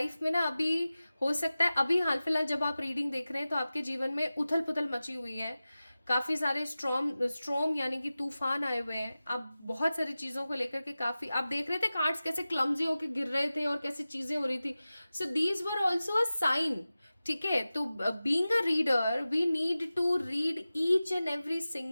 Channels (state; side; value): inverted; both; correlation -0.96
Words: में ना अभी हो सकता है, अभी हाल फिलहाल जब आप रीडिंग देख रहे हैं तो आपके जीवन में उथल पुथल मची हुई है, काफी सारे स्ट्रॉम यानी कि तूफान आए हुए हैं। आप बहुत सारी चीजों को लेकर के काफी आप देख रहे थे कार्ड्स कैसे क्लमजी होके गिर रहे थे और कैसे चीजें हो रही थी। So these were also a sign. ठीक है, तो being a reader we need to read each and every